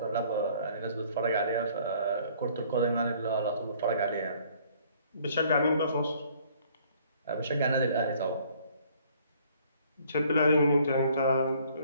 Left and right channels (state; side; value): inverted; both; correlation -0.59